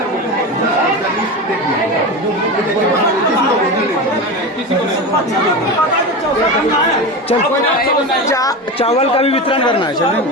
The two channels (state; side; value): normal; both; correlation 0.23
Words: किसी को नहीं। चल चावल का भी वितरण करना है। चलिए